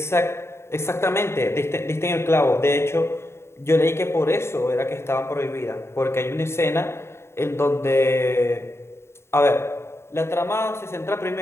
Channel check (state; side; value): late; right; 0.12 ms